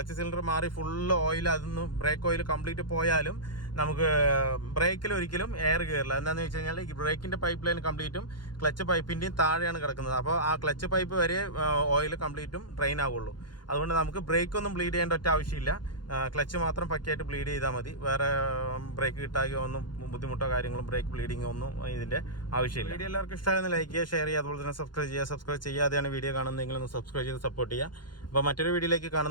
സിലിണ്ടർ മാറി ഫുള്ള് ഓയിൽ അതൊന്ന് ബ്രേക്ക് ഓയിൽ കംപ്ലീറ്റ് പോയാലും നമുക്ക് ബ്രേക്കിൽ ഒരിക്കലും എയർ കയറില്ല. എന്താണെന്ന് വെച്ച് കഴിഞ്ഞാൽ ഈ ബ്രേക്കിൻ്റെ പൈപ്പ് ലൈൻ കംപ്ലീറ്റും ക്ലച്ച് പൈപ്പിൻ്റെയും താഴെയാണ് കിടക്കുന്നത്. അപ്പോൾ ആ ക്ലച്ച് പൈപ്പ് വരെ ഓയിൽ കംപ്ലീറ്റും ഡ്രെയിൻ ആവുള്ളൂ. അതുകൊണ്ട് നമുക്ക് ബ്രേക്കൊന്നും ബ്ലീഡ് ചെയ്യേണ്ട ഒറ്റ ആവശ്യമില്ല. ക്ലച്ച് മാത്രം പക്കയായിട്ട് ബ്ലീഡ് ചെയ്താൽ മതി. വേറെ ബ്രേക്ക് കിട്ടാകയോ ഒന്നും ബുദ്ധിമുട്ടോ കാര്യങ്ങളും ബ്രേക്ക് ബ്ലീഡിങ്ങോ ഒന്നും ഇതിൻ്റെ ആവശ്യമില്ല. വീഡിയോ എല്ലാവർക്കും ഇഷ്ടമായെന്ന് ലൈക്ക് ചെയ്യുക, ഷെയർ ചെയ്യുക, അതുപോലെ തന്നെ സബ്സ്ക്രൈബ് ചെയ്യാതെയാണ് വീഡിയോ കാണുന്നതെങ്കിൽ ഒന്ന് സബ്സ്ക്രൈബ് ചെയ്ത് സപ്പോർട്ട് ചെയ്യുക. അപ്പോൾ മറ്റൊരു വീഡിയോയിലേക്ക്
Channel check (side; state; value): right; late; 0.71 ms